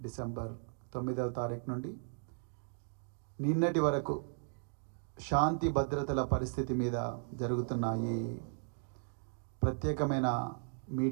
డిసెంబర్ 9వ తారీఖు నుండి నిన్నటి వరకు శాంతి భద్రతల పరిస్థితి మీద జరుగుతున్న ఈ ప్రత్యేకమైన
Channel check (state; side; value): silent; left; digital silence